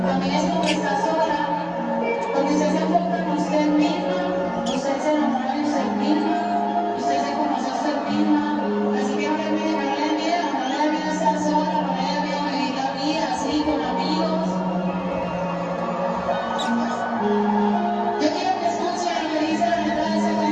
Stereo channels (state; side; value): identical; both; correlation 1.00